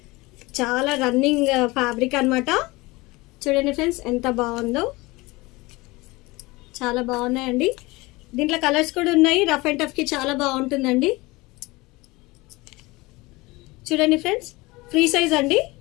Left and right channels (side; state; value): right; quieter; 22.4 dB